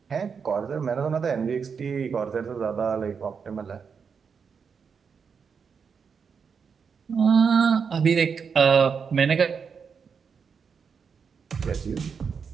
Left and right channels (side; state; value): left; quieter; 6.1 dB